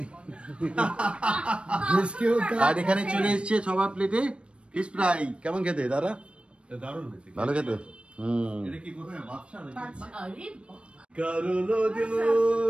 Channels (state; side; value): late; left; 0.058 ms